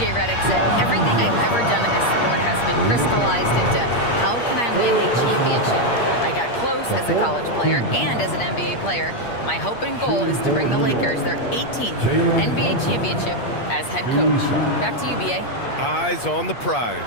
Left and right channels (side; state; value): right; late; 8.5 ms